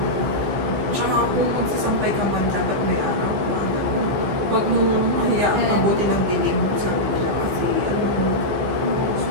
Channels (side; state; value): left; late; 15 ms